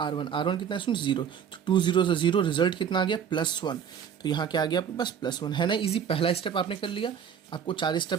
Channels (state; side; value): quieter; left; 8.1 dB